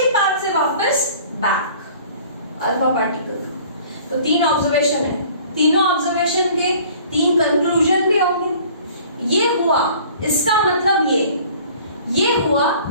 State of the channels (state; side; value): inverted; both; correlation -0.50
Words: पाथ से वापस बैक अल्फा पार्टिकल। तो 3 ऑब्जर्वेशन है, तीनों ऑब्जर्वेशन के 3 कंक्लूजन भी होंगे। ये हुआ, इसका मतलब ये हुआ,